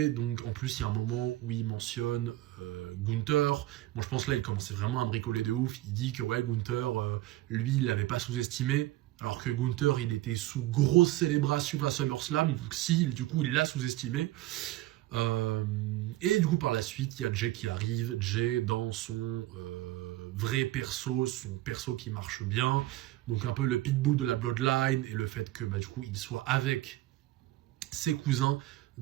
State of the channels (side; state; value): left; quieter; 16.4 dB